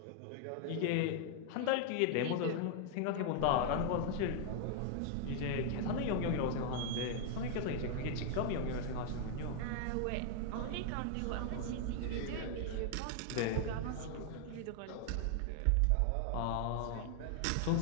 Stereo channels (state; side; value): different; both; correlation 0.00